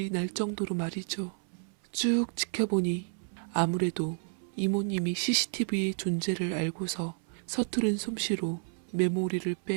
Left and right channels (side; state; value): left; silent; 57 dB below the other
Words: 날 정도로 말이죠. 쭉 지켜보니 아무래도 이모님이 CCTV의 존재를 알고서 서투른 솜씨로 메모리를